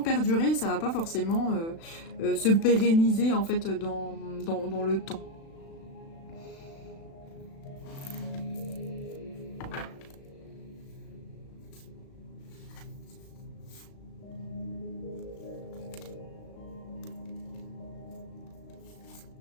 ça va pas forcément se pérenniser en fait dans le temps.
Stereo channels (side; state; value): right; late; 36 ms